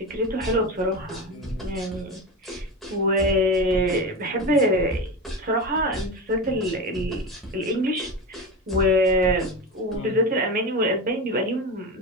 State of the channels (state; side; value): normal; both; correlation 0.22